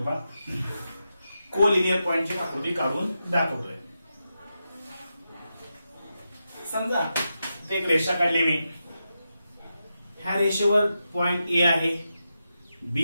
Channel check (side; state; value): both; inverted; correlation -0.88